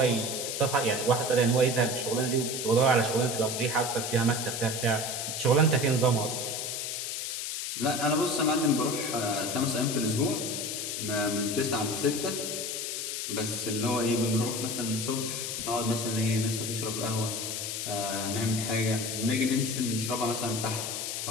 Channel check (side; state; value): left; noise; hiss, 3 dB below the sound